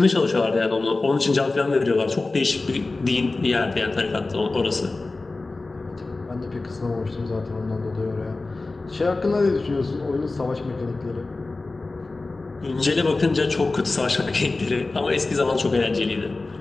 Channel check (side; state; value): right; quieter; 3.4 dB